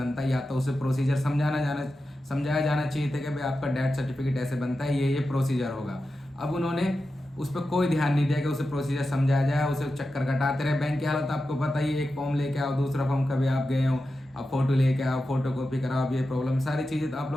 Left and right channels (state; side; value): normal; both; correlation 0.91